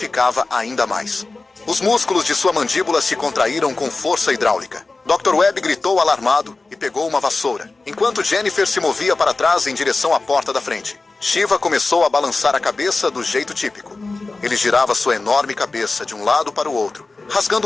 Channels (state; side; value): quieter; right; 3.5 dB